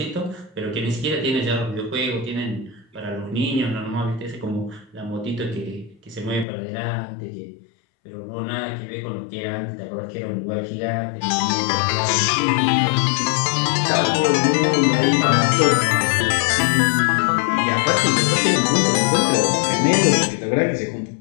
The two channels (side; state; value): right; drops out; at 6.5 s